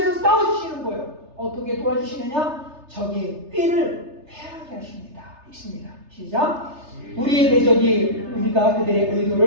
싸워주시는 거예요. 어떻게 도와주시느냐? 적의 꾀를 패하게 하십니다. 읽습니다. 시작. 우리의 대적이 우리가 그들의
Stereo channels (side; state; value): left; late; 3.3 ms